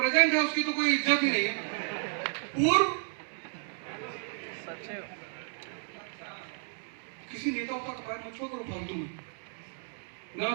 है उसकी तो कोई इज्जत ही नहीं है। पूर्व किसी नेता का पैर मत छुओ करो फालतू में, ना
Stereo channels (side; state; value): left; silent; 56 dB below the other